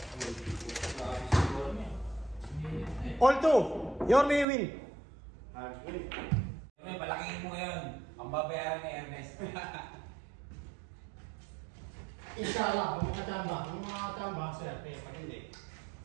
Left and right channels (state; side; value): drops out; left; at 4.5 s